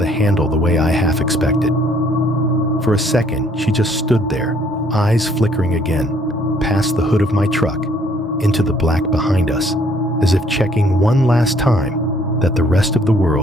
handle the way I half expected. For a second, she just stood there, eyes flickering again, past the hood of my truck, into the black behind us, as if checking one last time that the rest of the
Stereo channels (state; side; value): normal; both; correlation 0.63